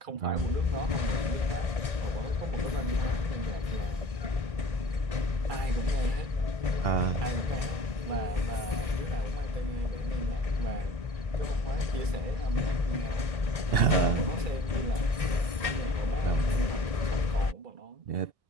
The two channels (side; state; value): left; late; 1.6 ms